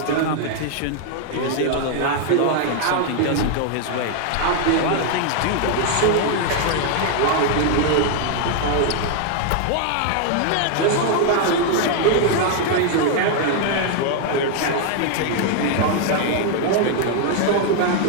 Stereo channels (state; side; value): different; both; correlation 0.00